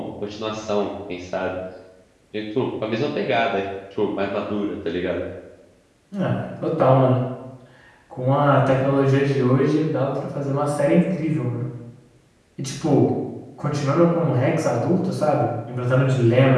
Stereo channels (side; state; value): both; identical; correlation 1.00